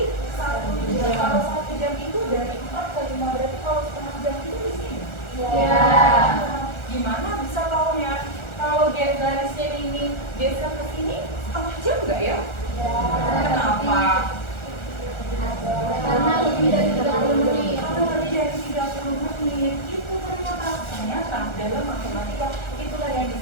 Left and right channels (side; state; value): right; late; 1.4 ms